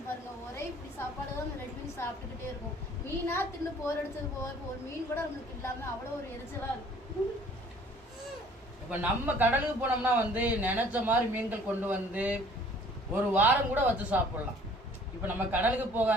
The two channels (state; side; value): normal; both; correlation 0.54